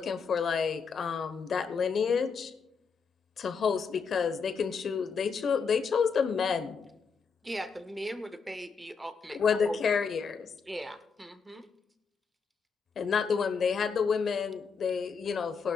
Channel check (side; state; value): right; quieter; 5.6 dB